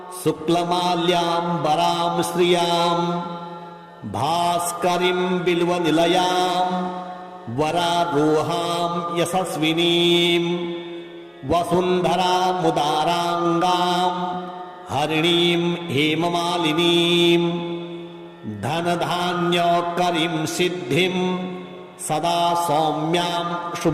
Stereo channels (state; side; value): identical; both; correlation 1.00